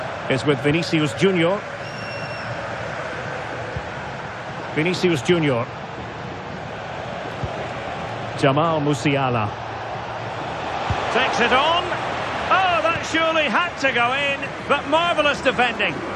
is with Vinicius Junior. Vinicius Junior. Jamal Musiala. Takes it on. Oh, that surely had to go in, but marvellous defending.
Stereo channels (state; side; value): identical; both; correlation 1.00